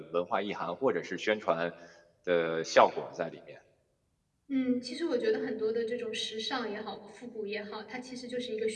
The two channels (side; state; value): both; identical; correlation 1.00